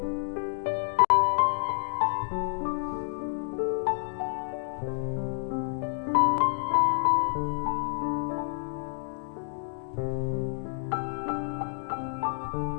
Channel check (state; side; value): silent; right; digital silence